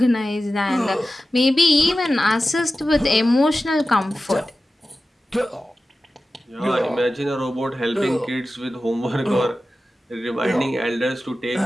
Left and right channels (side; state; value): both; normal; correlation 0.94